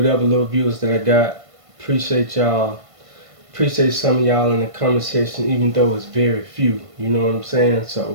little viewers that I got. Appreciate y'all. Appreciate some of y'all in the comment section, even though it's very few. You know what I'm saying?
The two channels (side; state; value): left; late; 1.5 ms